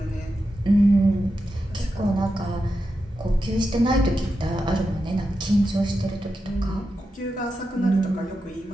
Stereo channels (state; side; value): normal; both; correlation 0.88